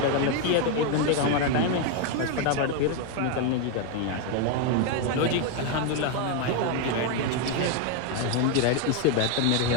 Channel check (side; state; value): both; different; correlation 0.01